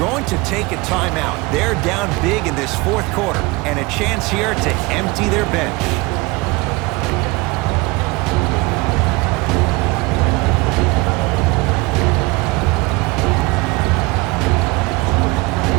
to take a timeout. They're down big in this 4th quarter. And a chance here to empty their bench.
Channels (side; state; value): left; quieter; 24.0 dB